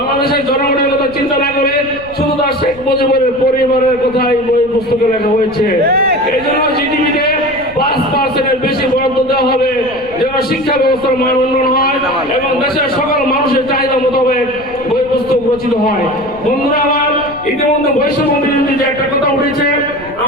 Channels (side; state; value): left; noise; rumble, 20 dB below the sound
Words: জনগণের কথা চিন্তা না করে শুধু তার শেখ মুজিবের পরিবারের কথাই বই পুস্তকে লেখা হয়েছে। এই জন্য জিডিপিতে 5% বেশি বরাদ্দ দেওয়া হবে যেন শিক্ষা ব্যবস্থার মান উন্নয়ন হয় এবং দেশের সকল মানুষের চাহিদা মোতাবেক বই পুস্তক রচিত হয়। বন্ধুরা আমার, ইতিমধ্যে বৈষম্য বিরোধী যে একটা কথা উঠেছে,